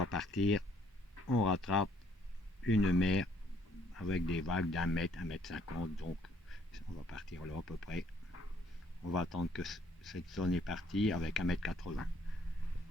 partir, on rattrape une mer avec des vagues d'1 mètre, 1,50 m, donc on va partir là à peu près. On va attendre que cette zone est partie avec 1,80 m.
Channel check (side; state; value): both; normal; correlation 0.65